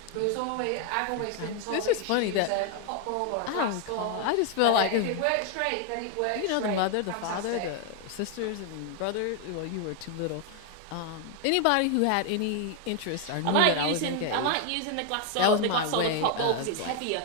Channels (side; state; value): both; different; correlation 0.01